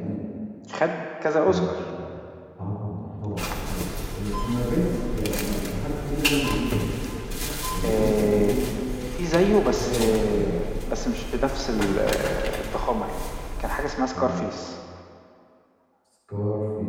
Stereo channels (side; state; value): both; identical; correlation 1.00